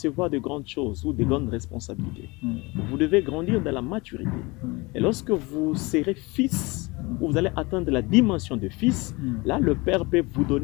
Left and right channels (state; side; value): quieter; right; 24.7 dB